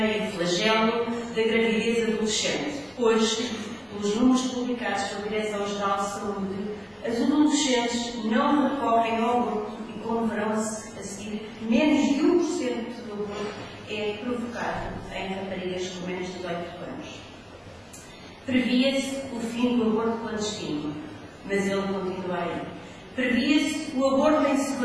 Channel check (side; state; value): both; identical; correlation 1.00